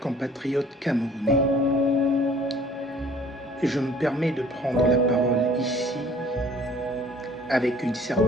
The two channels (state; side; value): normal; both; correlation 0.53